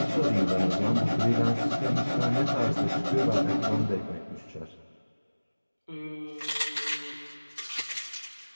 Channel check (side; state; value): both; inverted; correlation -1.00